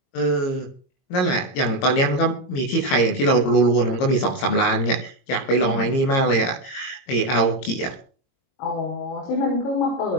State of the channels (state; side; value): late; right; 22 ms